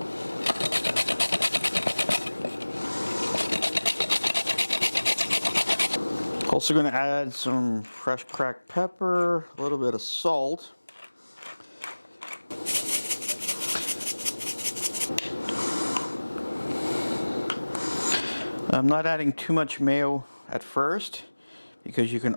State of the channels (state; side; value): inverted; both; correlation -1.00